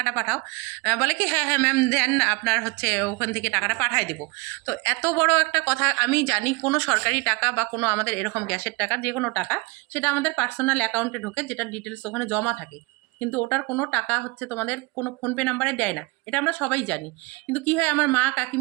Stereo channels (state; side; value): quieter; left; 25.9 dB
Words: পাঠাও। বলে কি হ্যাঁ হ্যাঁ ম্যাম দেন, আপনার হচ্ছে ওখান থেকে টাকাটা পাঠায় দেবো। তো এত বড় একটা কথা, আমি জানি কোনো সরকারি টাকা বা কোনো আমাদের এরকম গ্যাসের টাকা, যে কোনো টাকা সেটা আমাদের পার্সোনাল অ্যাকাউন্টে ঢোকে, যেটা ডিটেলস ওখানে জমা থাকে। কিন্তু ওটার কোনো টাকা হচ্ছে তোমাদের কোনো ফোনপে নাম্বারে দেয় না, এটা আমরা সবাই জানি। কিন্তু কি হয়, আমার মা,